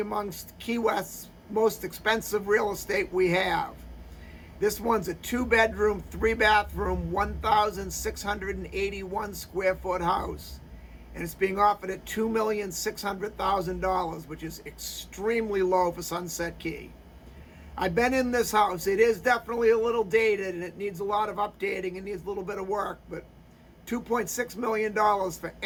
amongst Key West's most expensive real estate we have. This one's a 2-bedroom, 3-bathroom, 1,681 square foot house. And it's being offered at $2,600,000, which is extremely low for Sunset Key. I've been in this house. It is definitely a little dated and it needs a lot of updating and needs a little bit of work, but $2.6 million for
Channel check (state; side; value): identical; both; correlation 1.00